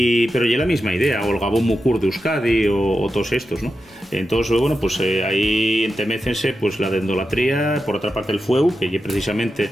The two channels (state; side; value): normal; both; correlation 0.90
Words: ya la misma idea, o el Gabón Mucur de Euskadi, o todos estos, ¿no? Entonces, bueno, pues ahí entemécense pues la dendolatría, por otra parte el fueu, que es precisamente